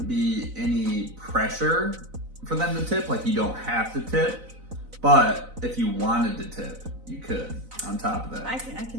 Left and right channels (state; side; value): late; left; 4.0 ms